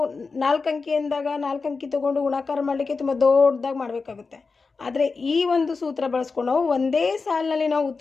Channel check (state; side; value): quieter; right; 4.4 dB